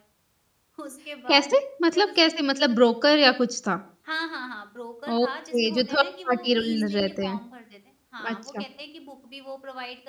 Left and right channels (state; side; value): identical; both; correlation 1.00